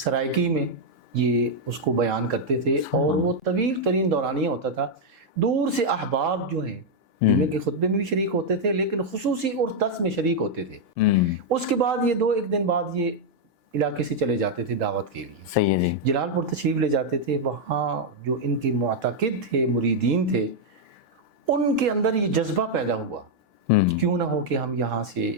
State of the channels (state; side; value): normal; both; correlation -0.01